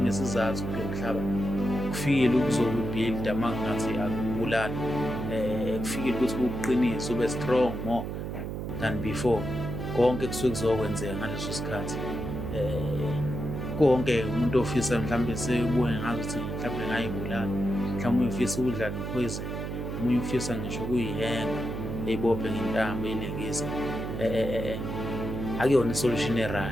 kulo mhlaba. Kufikile ukuzobuild amangathi akubulala, kufikile ukuthi kuqinise, ube strong more than before. Konke kusuke kuzokwenzeka ngaleso sikhathi. Konke umuntu ofisa mhlambe sebuye ngazo ukuthi mhlambe ngayibulala, mhlambe uyifisa ukudla nepoison, umunye ufisa ngisho kuyihenga eyibophe ngentambo eyilengisa. Akuyona isolution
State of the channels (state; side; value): noise; right; hum, 5 dB below the sound